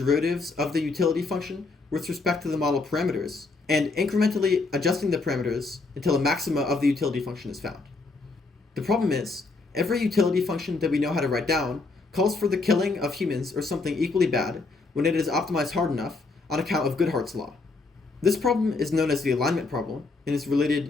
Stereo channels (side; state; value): right; quieter; 3.8 dB